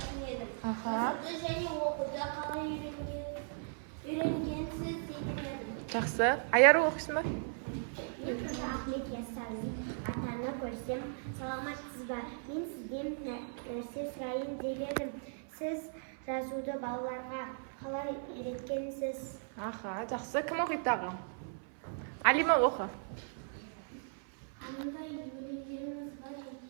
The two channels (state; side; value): silent; left; 53 dB below the other